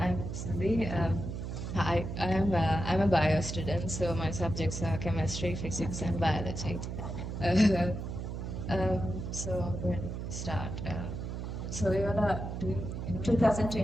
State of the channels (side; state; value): right; noise; hum, 5 dB below the sound